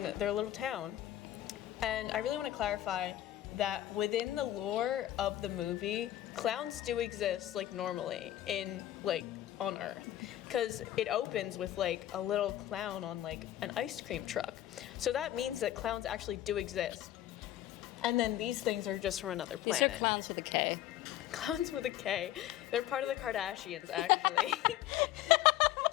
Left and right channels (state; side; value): quieter; right; 13.3 dB